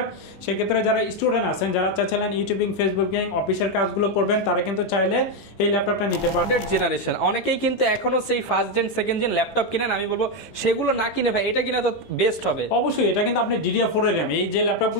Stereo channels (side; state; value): right; late; 17 ms